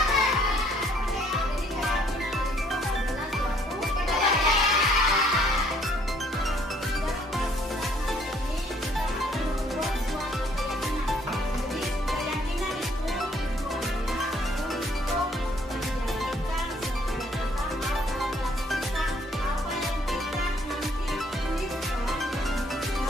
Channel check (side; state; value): both; normal; correlation 0.64